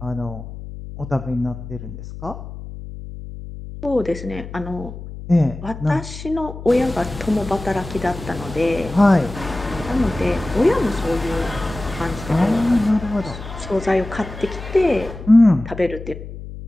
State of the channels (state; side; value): noise; left; hum, 12 dB below the sound